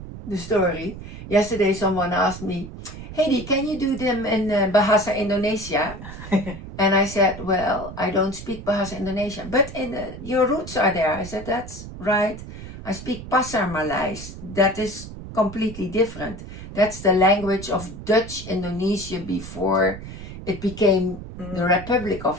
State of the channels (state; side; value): noise; right; rumble, 12 dB below the sound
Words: story. Yesterday, someone asked me, Hedy, can you do them in Bahasa Indonesia? And I said, well, I don't speak Bahasa Indonesia, but your roots are there. I said, that's right. I speak Pasar Malays. That is completely different. That's the language of Dutch Indonesia before it became the Republic of